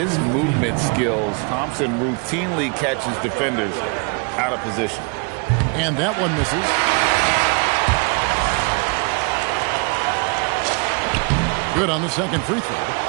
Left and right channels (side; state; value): left; quieter; 33.4 dB